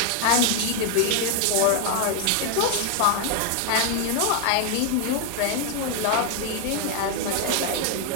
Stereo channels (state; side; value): different; both; correlation 0.00